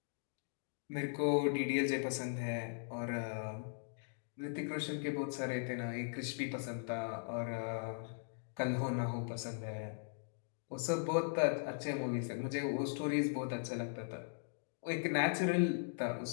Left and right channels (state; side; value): silent; right; digital silence